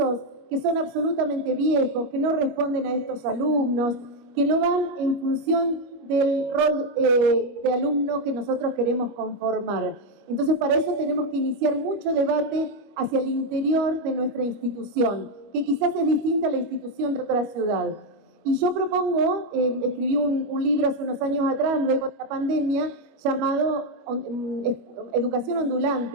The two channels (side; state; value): left; late; 25 ms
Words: que son absolutamente viejos, que no responden a estos alumnos, que no van en función del rol de alumno que nosotros queremos conformar. Entonces, para eso tenemos que iniciar mucho debate hacia el interior de nuestra institución, que quizás es distinta a la institución de otra ciudad. Y yo propongo, escribí un libro hace unos años atrás, luego de la pandemia, llamado Educación